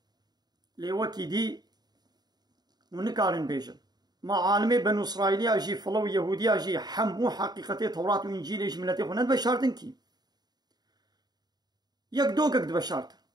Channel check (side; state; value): left; late; 0.20 ms